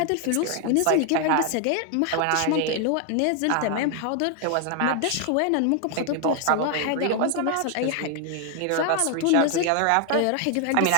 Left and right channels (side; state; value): both; different; correlation 0.00